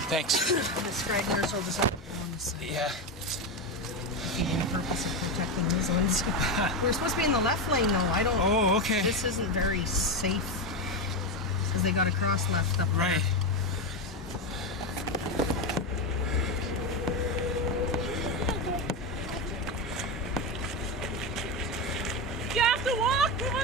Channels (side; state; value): both; normal; correlation 0.13